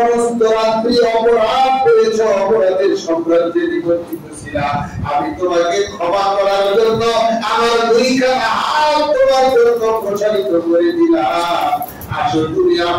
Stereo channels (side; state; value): both; identical; correlation 1.00